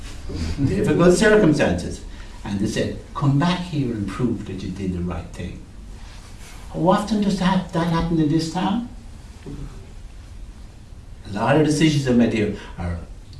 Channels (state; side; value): identical; both; correlation 1.00